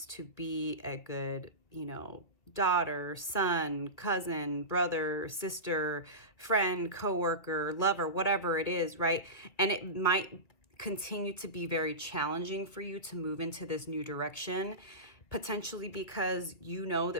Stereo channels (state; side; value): late; right; 2.3 ms